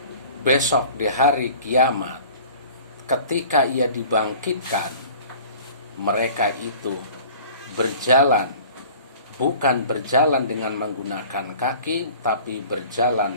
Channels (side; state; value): both; inverted; correlation -0.46